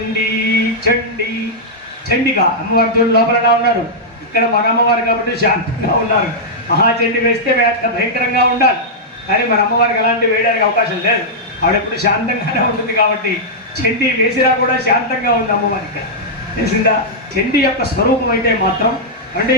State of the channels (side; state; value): both; normal; correlation -0.09